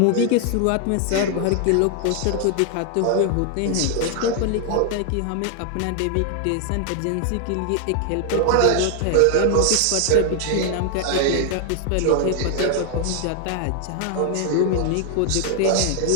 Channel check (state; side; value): different; both; correlation 0.00